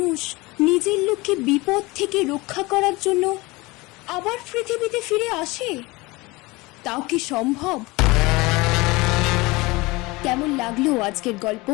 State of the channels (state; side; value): quieter; right; 22.9 dB